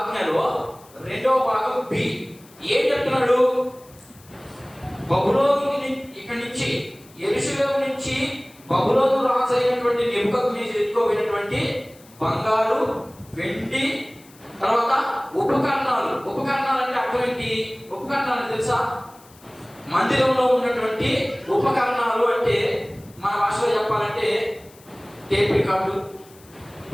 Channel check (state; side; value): noise; left; hiss, 26 dB below the sound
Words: రెండవ భాగం బి. ఏం చెప్తున్నాడు? బబులోను ఇక్కడి నుంచి యెరూషలేము నుంచి బబులోను రాజు అయినటువంటి నెబుకద్నెజరు ఎత్తుకోబోయినటువంటి బంగారు, వెండి, తర్వాత ఉపకరణాలు. ఉపకరణాలు అంటే అర్థం ఏంటి? ఉపకరణాలు తెలుసా? మందిరంలో ఉన్నటువంటి ఉపకరణాలు అంటే మన భాషలో చెప్పాలంటే టేప్ రికార్డు,